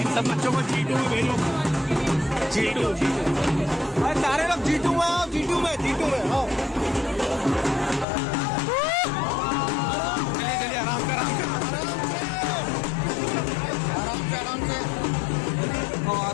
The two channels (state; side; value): drops out; right; at 8.1 s